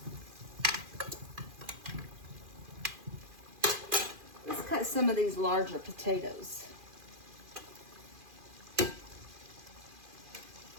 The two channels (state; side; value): late; left; 2.4 ms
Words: Let's cut some of these larger potatoes.